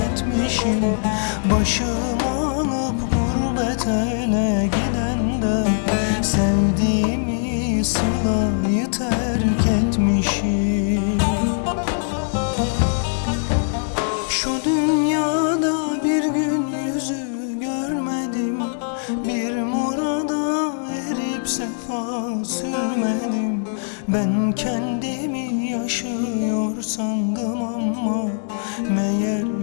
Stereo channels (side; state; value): right; silent; 64 dB below the other